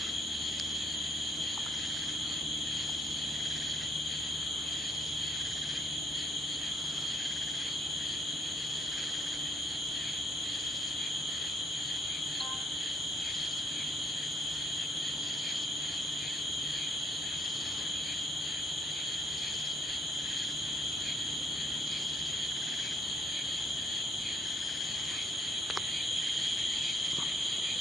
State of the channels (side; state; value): both; normal; correlation 0.69